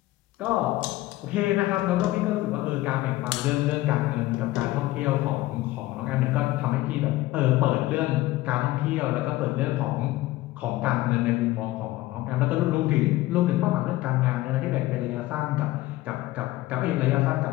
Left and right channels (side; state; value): right; quieter; 17.3 dB